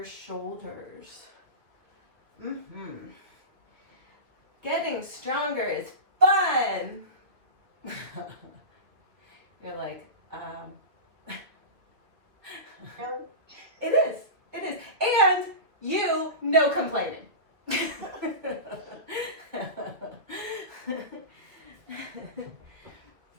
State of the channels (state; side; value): late; left; 2.4 ms